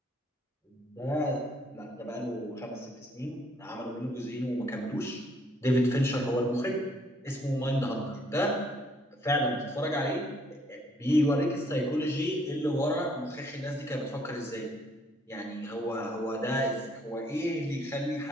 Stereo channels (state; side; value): normal; both; correlation 0.66